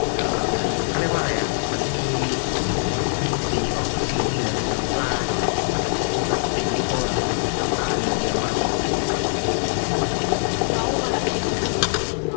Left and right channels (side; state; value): right; silent; digital silence